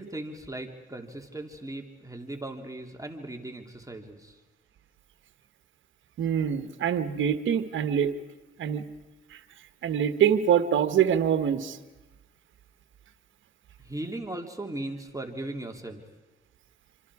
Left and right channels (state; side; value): quieter; left; 7.5 dB